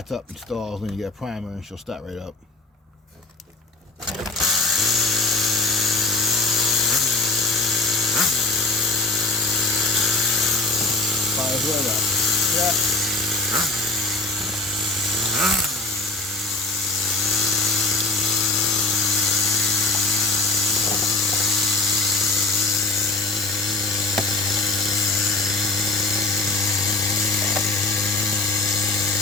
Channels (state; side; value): quieter; right; 3.4 dB